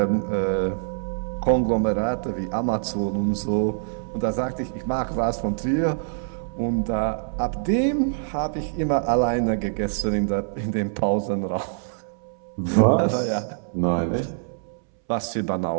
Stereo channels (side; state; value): left; silent; 62 dB below the other